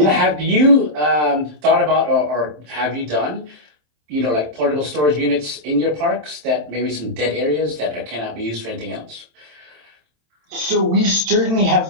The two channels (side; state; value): left; late; 27 ms